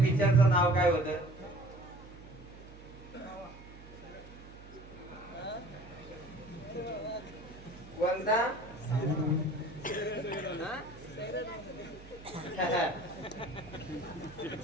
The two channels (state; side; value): noise; right; hum, 18 dB below the sound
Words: नाव काय होतं कोणता